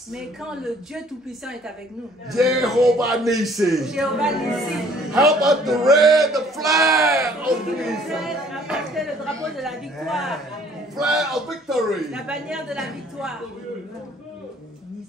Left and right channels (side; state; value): both; normal; correlation 0.57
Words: Mais quand le Dieu Tout-Puissant est avec nous, Jehovah Nissi, Jéhovah Nissi, help us to raise the flag of qui nous peace, aide à porter le drapeau de la victoire, flag of victory. la bannière de la victoire.